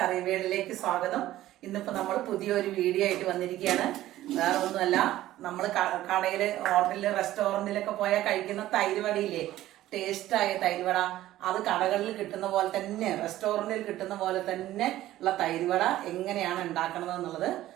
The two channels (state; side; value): quieter; left; 14.6 dB